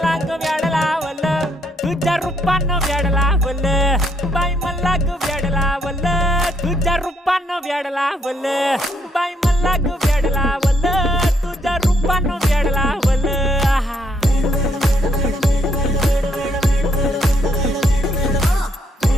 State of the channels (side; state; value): both; normal; correlation 0.73